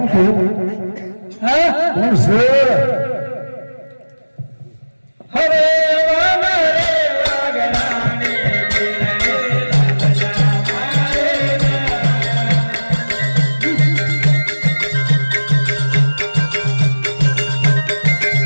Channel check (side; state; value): both; inverted; correlation -1.00